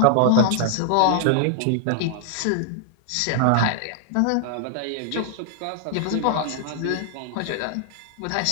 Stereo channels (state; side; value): different; both; correlation 0.00